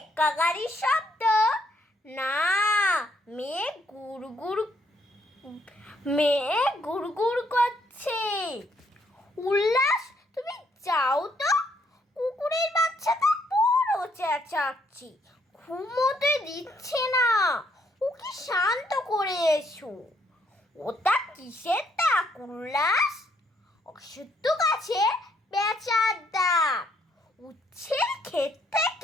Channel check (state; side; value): normal; both; correlation 0.71